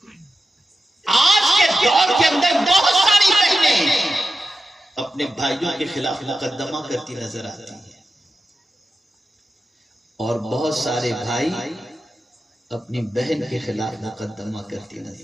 آج کے دور کے اندر بہت ساری بہنیں اپنے بھائیوں کے خلاف مقدمہ کرتی نظر آتی ہیں، اور بہت سارے بھائی اپنی بہن کے خلاف مقدمہ کرتی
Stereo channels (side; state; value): both; normal; correlation 0.91